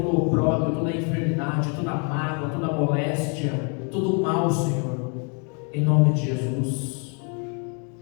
o opróbrio, toda a enfermidade, toda a mágoa, toda a moléstia, todo o mal, Senhor, em nome de Jesus.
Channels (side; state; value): right; quieter; 37.7 dB